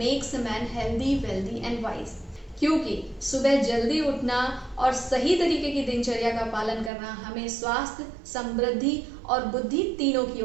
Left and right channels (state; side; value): drops out; left; at 6.9 s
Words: a man healthy wealthy and wise. क्योंकि सुबह जल्दी उठना और सही तरीके की दिनचर्या का पालन करना हमें स्वास्थ्य, समृद्धि और बुद्धि तीनों की